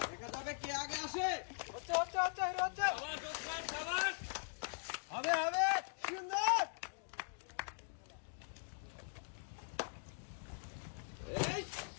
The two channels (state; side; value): silent; right; digital silence